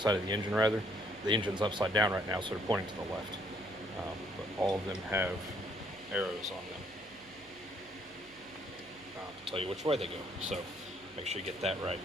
of the engine, rather. The engine's upside down right now, so they're pointing to the left. But all of them have arrows on them to tell you which way they go. So make sure you get that right.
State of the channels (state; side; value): noise; right; hum, 26 dB below the sound